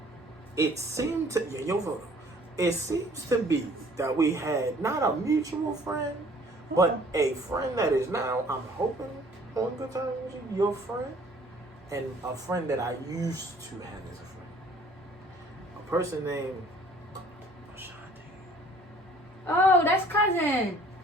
It seemed to your photo. It seems to be that we had not a mutual friend, but a friend that is now, I'm hoping, on good terms with you, your friend, and a friend that I used to have as a friend. A person named Ashanti. Oh, that's cousin.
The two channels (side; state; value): both; normal; correlation 0.55